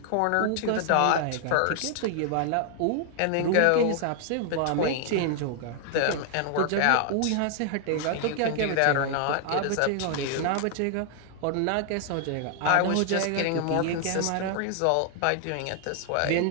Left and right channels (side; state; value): both; different; correlation 0.00